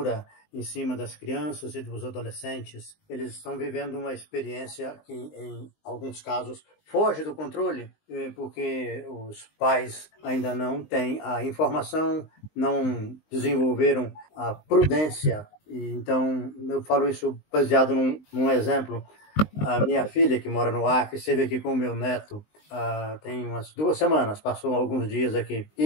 em cima das crianças e dos adolescentes. Eles estão vivendo uma experiência que, em alguns casos, foge do controle, porque os pais ainda não têm a informação, não desenvolveram a prudência. Então, eu falo isso baseado num exemplo. A minha filha, que mora no Acre, esteve aqui com o meu neto tem umas 2 semanas, passou alguns dias aqui.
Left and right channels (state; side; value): late; right; 19 ms